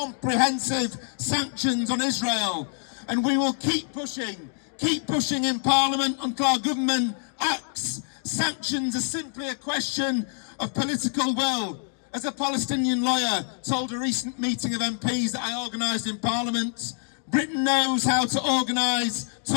sanctions on Israel. And we will keep pushing in Parliament until our government acts. Sanctions are simply a question of political will. As a Palestinian lawyer told a recent meeting of MPs that I organised in Parliament, Britain knows how to organise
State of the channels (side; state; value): right; silent; 61 dB below the other